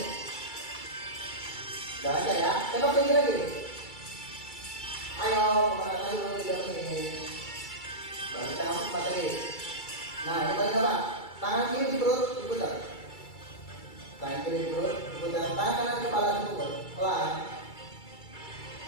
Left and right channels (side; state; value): right; late; 2.3 ms